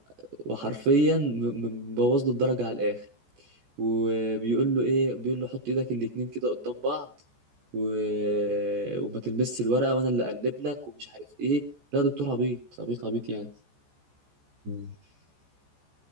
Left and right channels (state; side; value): late; left; 14 ms